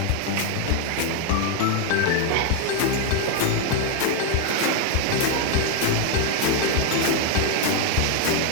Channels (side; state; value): both; different; correlation 0.01